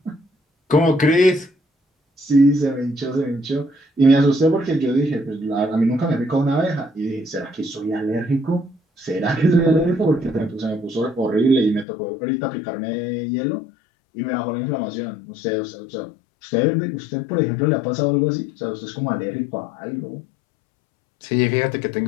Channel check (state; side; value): drops out; right; at 11.9 s